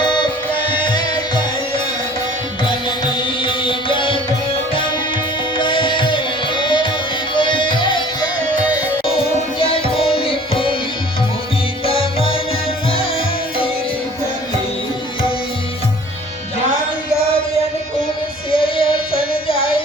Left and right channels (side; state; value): both; normal; correlation 0.49